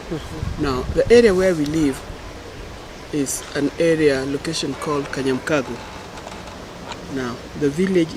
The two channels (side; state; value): both; identical; correlation 1.00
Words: Now, the area where we live is an area, location called Kanyamkago. Now, the village